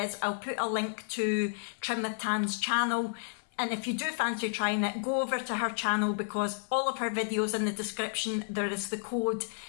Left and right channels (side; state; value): right; silent; 57 dB below the other